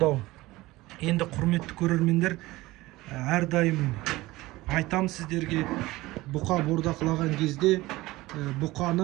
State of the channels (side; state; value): left; quieter; 19.1 dB